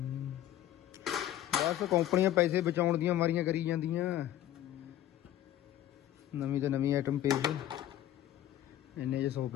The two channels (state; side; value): quieter; right; 12.5 dB